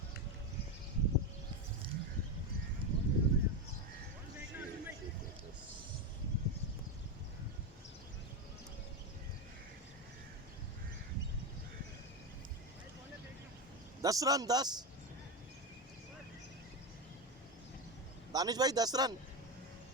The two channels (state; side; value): normal; both; correlation 0.13